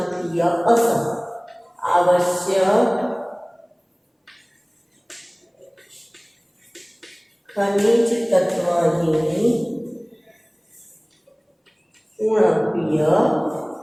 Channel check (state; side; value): identical; both; correlation 1.00